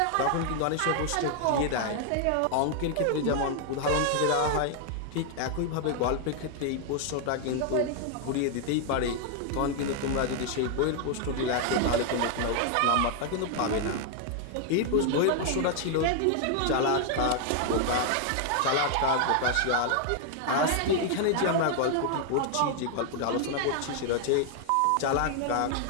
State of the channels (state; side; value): different; both; correlation 0.00